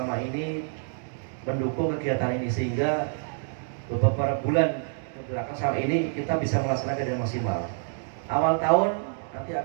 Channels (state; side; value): silent; left; digital silence